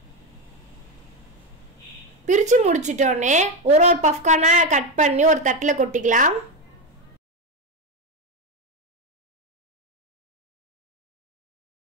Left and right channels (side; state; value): both; normal; correlation 0.12